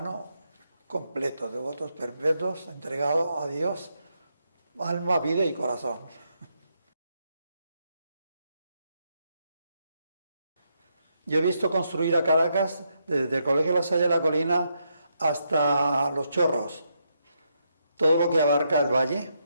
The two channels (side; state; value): both; inverted; correlation -0.80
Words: completo, de votos perpetuos, entregado a Dios, alma, vida y corazón. Yo he visto construir a Caracas, desde el Colegio La Salle de la Colina hasta Los Chorros, todo lo que abarca el valle,